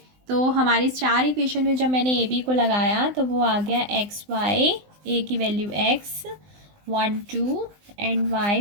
तो हमारी स्टार इक्वेशन में जब मैंने ए बी को लगाया तो वो आ गया एक्स वाई, ए की value X 1 2 and Y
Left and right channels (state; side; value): late; left; 20 ms